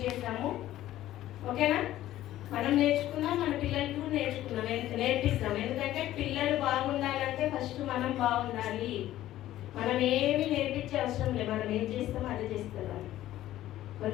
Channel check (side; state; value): right; quieter; 14.0 dB